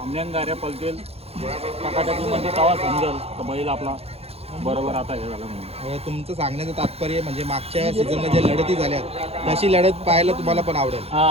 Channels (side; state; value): left; late; 0.29 ms